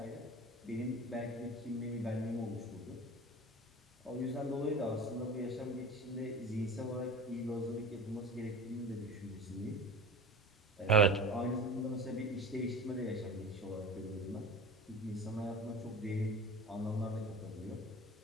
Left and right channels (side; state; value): both; normal; correlation 0.35